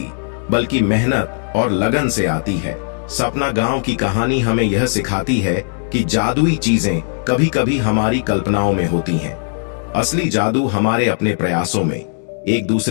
बल्कि मेहनत और लगन से आती है। सपना गांव की कहानी हमें यह सिखाती है कि जादुई चीजें कभी कभी हमारी कल्पनाओं में होती हैं। असली जादू हमारे अपने प्रयासों में, एक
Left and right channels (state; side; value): silent; right; digital silence